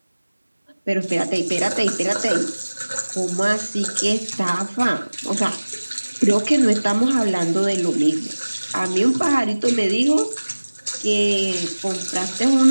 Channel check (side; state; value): both; inverted; correlation -1.00